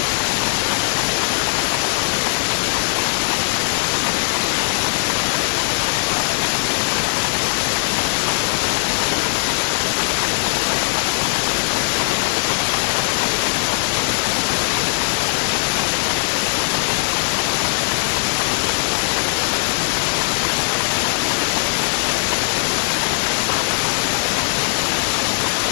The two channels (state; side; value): silent; right; digital silence